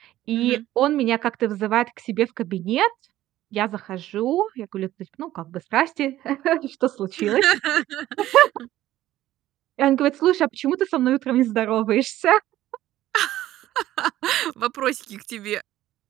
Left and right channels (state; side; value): quieter; left; 14.3 dB